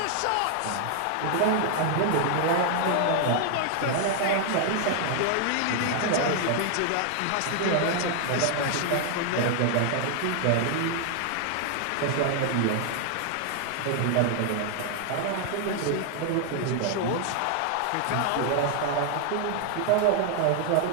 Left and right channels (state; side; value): different; both; correlation 0.00